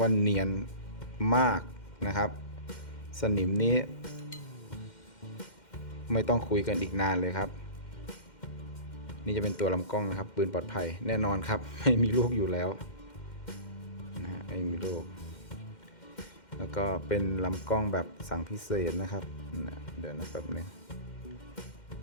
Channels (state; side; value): late; right; 2.1 ms